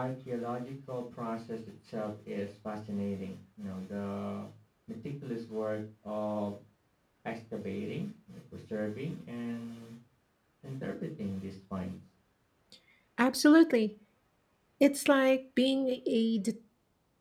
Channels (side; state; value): both; identical; correlation 1.00